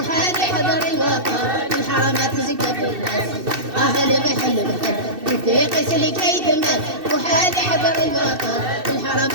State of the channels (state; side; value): late; left; 2.6 ms